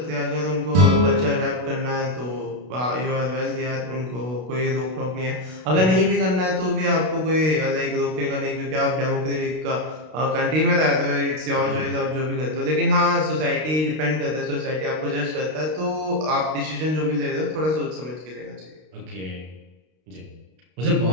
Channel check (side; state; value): left; late; 32 ms